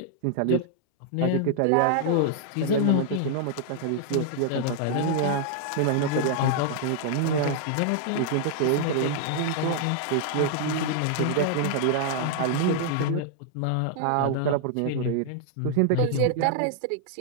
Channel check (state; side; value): different; both; correlation -0.01